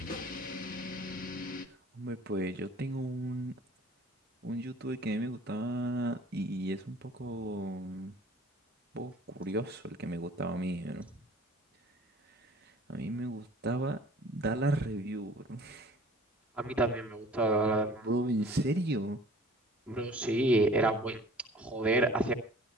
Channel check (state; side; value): normal; both; correlation 0.49